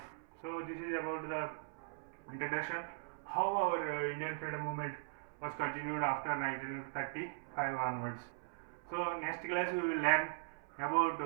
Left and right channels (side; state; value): left; silent; 51 dB below the other